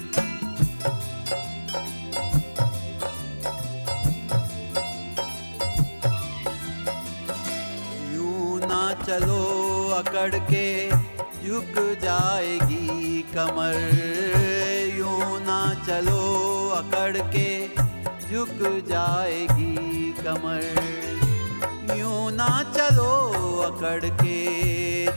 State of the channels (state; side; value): inverted; both; correlation -1.00